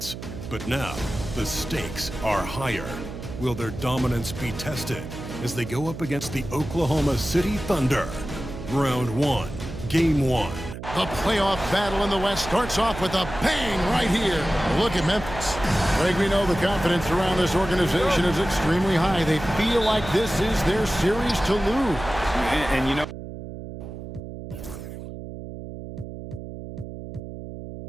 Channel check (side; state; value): right; noise; hum, 10 dB below the sound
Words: But now, the stakes are higher. Will their dominance be tested as they go up against the Oklahoma City Thunder? Round 1, Game 1. The playoff battle in the West starts off with a bang right here. Look at Memphis. Greg, we know the confidence around this organization is extremely high. They feel like this is their series to lose. And you know,